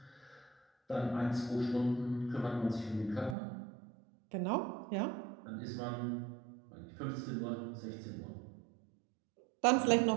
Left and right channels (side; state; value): left; drops out; at 3.4 s